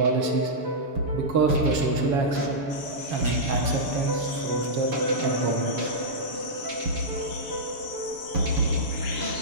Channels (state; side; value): late; left; 7.3 ms